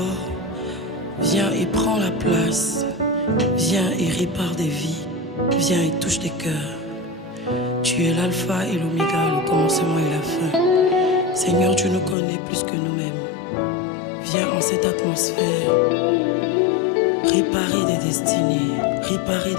Viens et prends la place. Viens et répare des vies. Viens et touche des cœurs. Tu es l'alpha et l'oméga, le commencement et la fin. Seigneur, tu nous connais plus que nous-mêmes. Viens en cette atmosphère réparer des destinées, réparer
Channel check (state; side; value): drops out; right; at 12.2 s